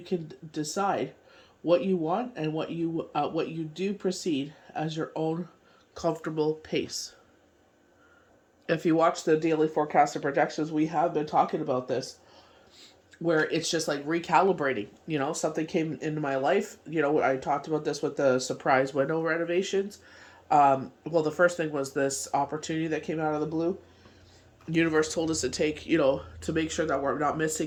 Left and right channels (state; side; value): identical; both; correlation 1.00